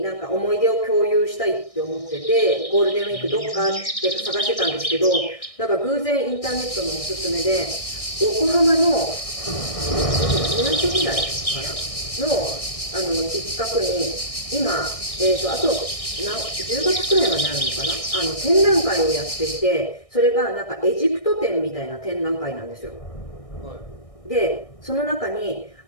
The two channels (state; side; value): late; right; 1.6 ms